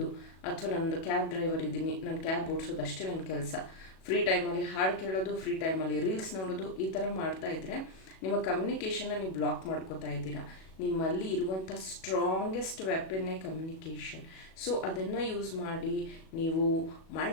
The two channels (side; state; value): right; late; 37 ms